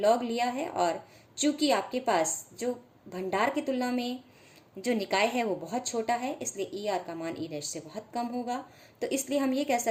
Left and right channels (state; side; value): identical; both; correlation 1.00